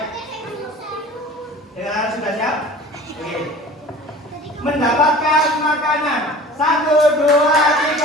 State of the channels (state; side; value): normal; both; correlation 0.42